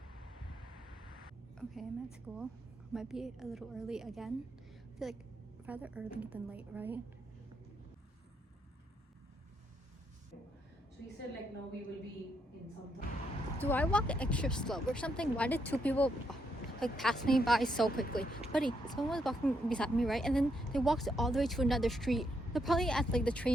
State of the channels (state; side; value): normal; both; correlation 0.77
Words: Okay, I'm at school. Might be a little early again. I feel like rather early than late, right? So he said like, no, we will be in some time. Do I walk extra slow or something? Why did two people like pass me by so quickly? Buddy, someone was walking beside me, right? And then they walked all the way to another street. They're probably at like the